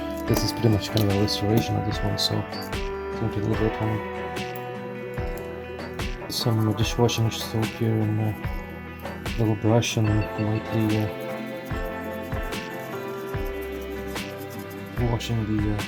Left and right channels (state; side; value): identical; both; correlation 1.00